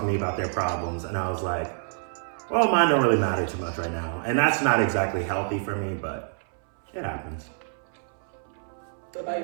to me about their problems, and I was like, well, mine don't really matter too much right now. And that's not exactly healthy for me, but it happens. What about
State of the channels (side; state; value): left; silent; 59 dB below the other